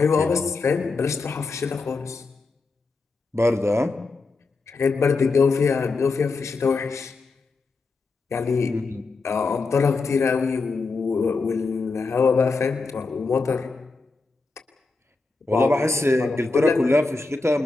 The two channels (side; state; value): right; quieter; 3.9 dB